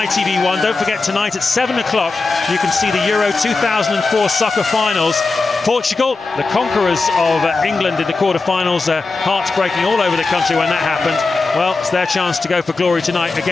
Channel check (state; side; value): quieter; right; 3.9 dB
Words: Don't forget, tonight at 7 o'clock, you can see the Euro 2004 soccer finals. Portugal, the conquerors of England in the quarterfinals, hearts breaking all over the country when that happened. Well, it's their chance to go for glory tonight